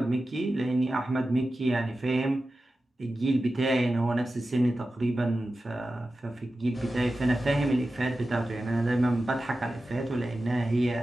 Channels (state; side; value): normal; both; correlation 0.93